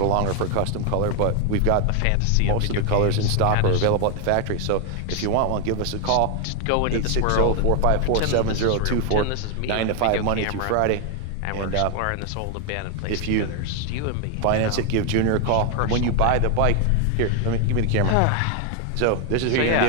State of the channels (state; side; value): different; both; correlation 0.01